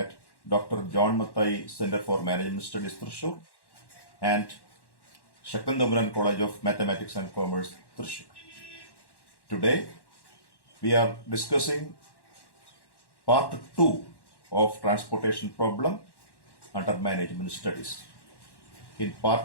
Dr. John Mathai Center for Management Studies, Thrissur, and Shakandamran College of Mathematics and Commerce, Thrissur. Today, we are discussing part 2 of transportation problem under management studies. In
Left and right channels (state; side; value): late; right; 1.1 ms